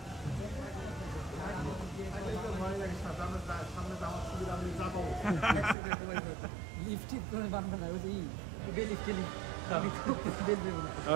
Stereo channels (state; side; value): drops out; left; at 5.8 s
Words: সামনে যাওয়ার সুবিধা আমি যাবো লিফট ঠিক করে বানানো না ওই যে লিফট